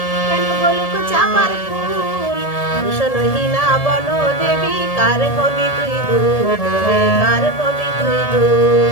কেন বলুক চাপার ফুল। ভূষণহীনা বন দেবী কার হবি তুই দুল, কার হবি তুই দুল।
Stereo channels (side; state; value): right; late; 1.7 ms